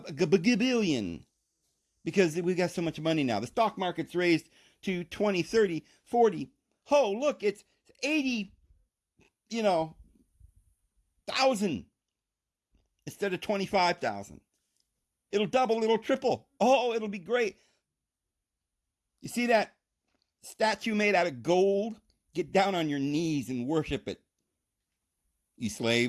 billion, because we got so much money now. The stock market's raised to 20, 30, 40. Oh, look, it's 80, thousand instead of 25,000. It'll double, it'll triple. Oh, it'll be great. You see that statue made out of gold? Get down on your knees and worship it, you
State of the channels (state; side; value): identical; both; correlation 1.00